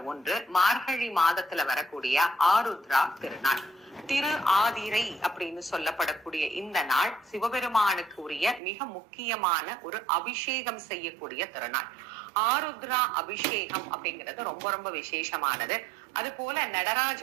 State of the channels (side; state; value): left; drops out; at 8.6 s